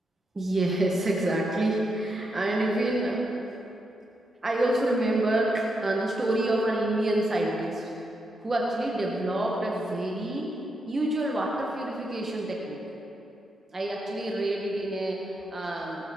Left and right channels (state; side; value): normal; both; correlation 0.82